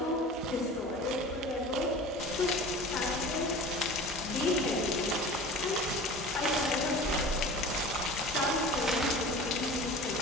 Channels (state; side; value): normal; both; correlation 0.38